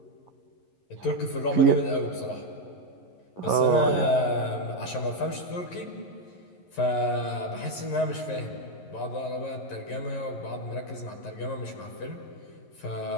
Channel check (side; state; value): right; late; 11 ms